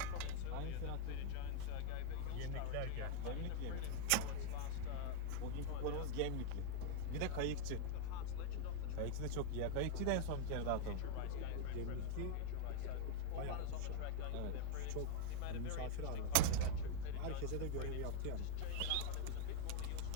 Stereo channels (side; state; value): both; different; correlation -0.01